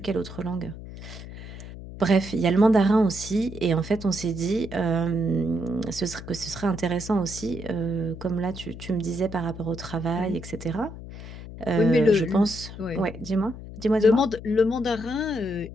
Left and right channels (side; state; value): left; noise; hum, 12 dB below the sound